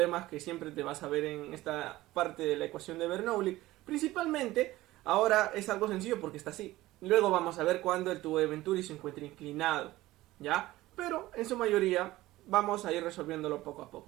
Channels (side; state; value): left; quieter; 17.3 dB